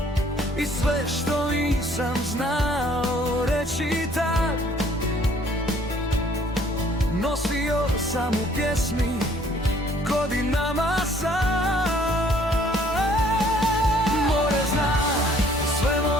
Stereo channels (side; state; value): both; normal; correlation 0.59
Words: I sve što nisam znao reći tad, nosio sam u pjesmi godinama sam. More zna sve